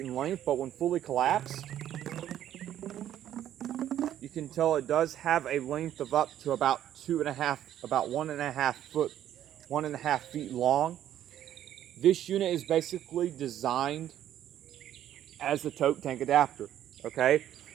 in length. But when fully collapsed, you can tell it does have a length of up to about 1.5 feet long. This unit is basically designed as a tote tank adapter. Okay.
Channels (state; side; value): quieter; left; 11.4 dB